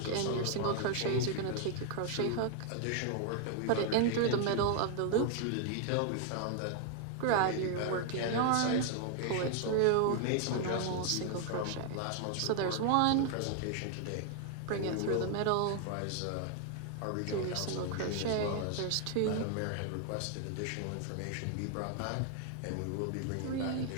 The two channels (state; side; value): different; both; correlation 0.00